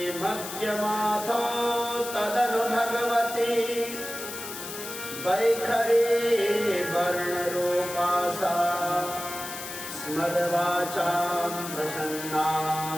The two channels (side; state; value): left; noise; hiss, 9 dB below the sound